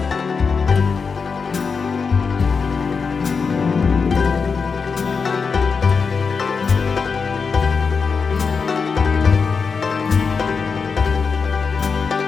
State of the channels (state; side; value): quieter; right; 5.3 dB